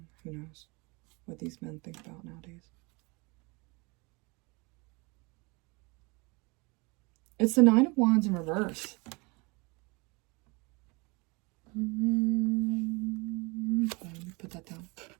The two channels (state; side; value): quieter; left; 27.6 dB